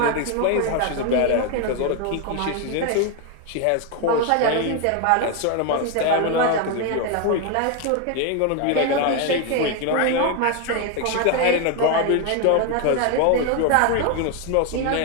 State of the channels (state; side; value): different; both; correlation 0.01